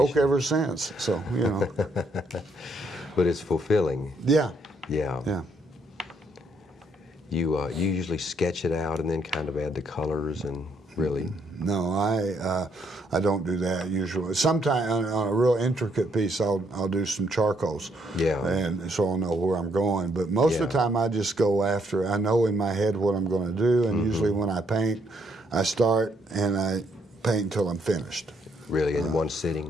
ever since, so, you know. But it's fulfilling. Yeah. Yeah. Yeah. You usually sketch it out and then kind of add the colors and really. No, I don't do that usually. Sometimes on a real intricate piece, I'll do some charcoals. Yeah. And so I'll know where I'm going. But most of the time, I just go after. I know in my head what I'm going to do, and usually when I paint, I start and I paint until I'm finished. Really, in one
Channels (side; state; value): both; normal; correlation 0.72